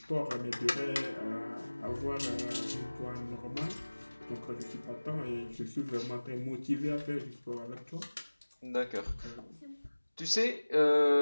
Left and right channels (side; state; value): both; inverted; correlation -1.00